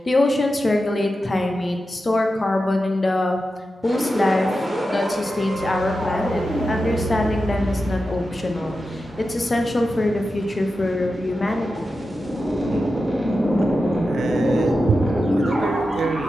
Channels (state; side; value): normal; both; correlation 0.91